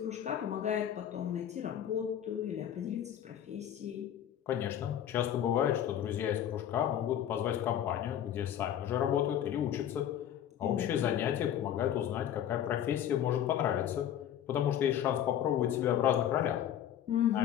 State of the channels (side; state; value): right; quieter; 10.4 dB